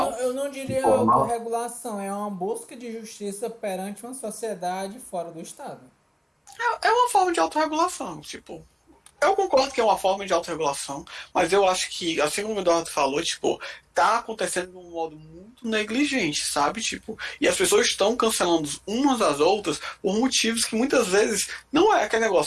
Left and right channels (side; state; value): both; identical; correlation 1.00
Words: Eu não diria autorregulação, é uma busca de justiça perante uma sociedade fora do Estado. É uma forma de autorregulação, tipo... Eu concordo que é uma forma de autorregulação, mas eu acho que, assim como o Eduardo falou, tipo, tá acontecendo de um modo muito negligente, sabe? Tipo, e as pessoas estão cancelando umas às outras por motivos que muitas vezes não é aquele